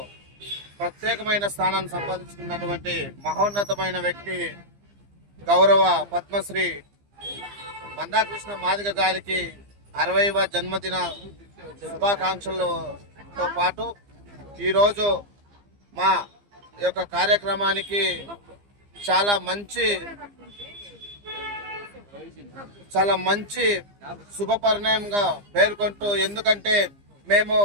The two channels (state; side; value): late; left; 15 ms